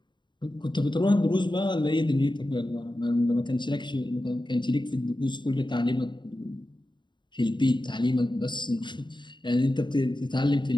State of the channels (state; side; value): late; right; 0.22 ms